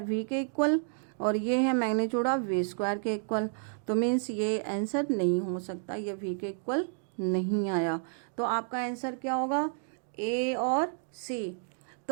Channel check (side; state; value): left; silent; 57 dB below the other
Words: v के इक्वल और ये है मैग्नीट्यूड ऑफ v स्क्वायर के इक्वल, तो मीन्स ये आंसर नहीं हो सकता, ये v के इक्वल नहीं आया। तो आपका आंसर क्या होगा, a और c।